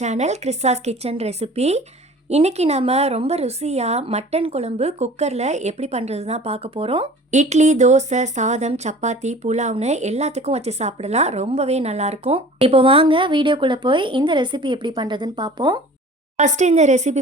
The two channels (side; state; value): both; normal; correlation 0.44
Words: கிறிஸ்தாஸ் kitchen recipe. இன்றைக்கி நம்ம ரொம்ப ருசியாக மட்டன் குழம்பு குக்கரில் எப்படி பண்ணுறது தான் பார்க்க போகிறோம். இட்லி, தோசை, சாதம், சப்பாத்தி, புலாவ்னு எல்லாத்துக்கும் வச்சு சாப்பிடலாம். ரொம்பவே நல்லாயிருக்கும். இப்போ வாங்க வீடியோக்குள்ளே போய் இந்த ரெசிபி எப்படி பண்ணுறதுன்னு பார்ப்போம். ஃபஸ்ட்டு இந்த